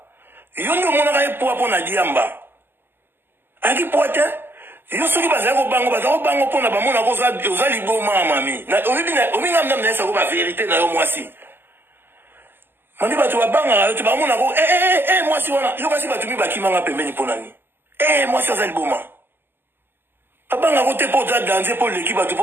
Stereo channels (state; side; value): late; left; 0.098 ms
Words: yo nde omonaka ye poa mpo na diamba azalaki poa te yo soki bazali kobango mpona bamonaka oza liboma mami ominga mnam na yesako baverité na yo mwasi mami bato babangaka yo te bamonaka mwasi wana yo kasi bato mi bakimanga pembeni mpo nani mwasi aza liboma abangako te mpo oza danse mpo leki bato